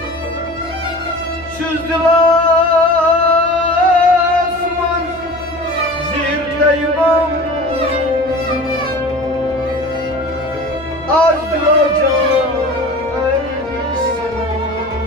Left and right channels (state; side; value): noise; left; hum, 20 dB below the sound